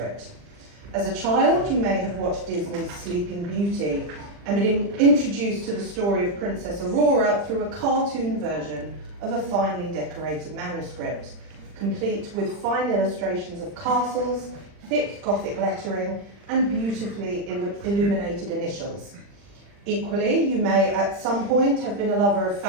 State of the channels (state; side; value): late; left; 40 ms